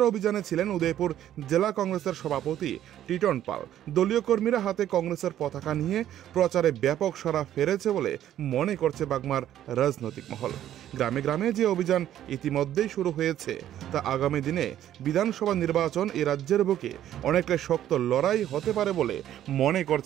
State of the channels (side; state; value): left; quieter; 11.7 dB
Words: অভিযানে ছিলেন উদয়পুর জেলা কংগ্রেসের সভাপতি টিটন পাল। দলীয় কর্মীরা হাতে কংগ্রেসের পতাকা নিয়ে প্রচারে ব্যাপক সাড়া ফেলেছে বলে মনে করছে বাগমার রাজনৈতিক মহল। গ্রামে গ্রামে যে অভিযান ইতিমধ্যেই শুরু হয়েছে তা আগামী দিনে বিধানসভা নির্বাচন এই রাজ্যের বুকে অনেকটা শক্ত লড়াই হতে পারে বলে মনে